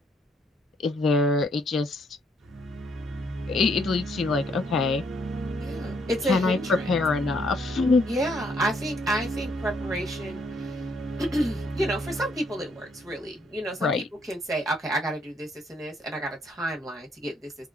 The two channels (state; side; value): normal; both; correlation 0.71